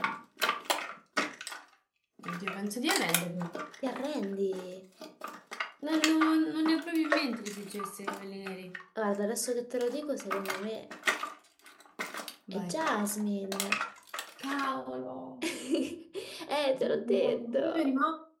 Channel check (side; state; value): both; identical; correlation 1.00